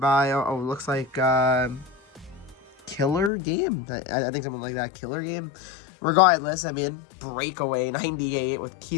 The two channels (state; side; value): drops out; right; at 3.3 s